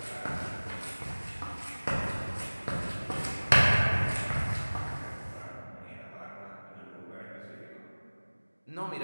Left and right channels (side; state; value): both; inverted; correlation -1.00